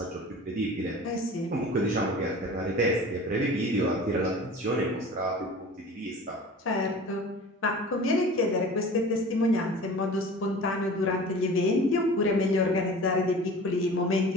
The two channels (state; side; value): normal; both; correlation 0.40